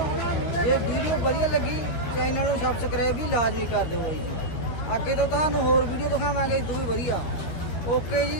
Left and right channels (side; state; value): right; late; 13 ms